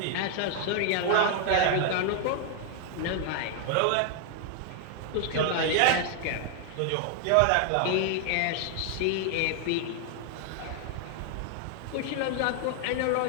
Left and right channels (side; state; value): both; different; correlation 0.00